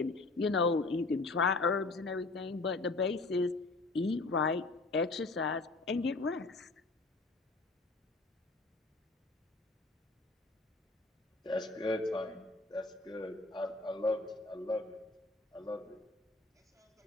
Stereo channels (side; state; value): right; quieter; 3.4 dB